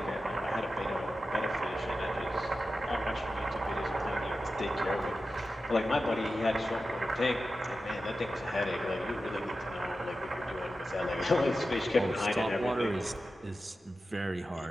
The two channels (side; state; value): both; normal; correlation 0.92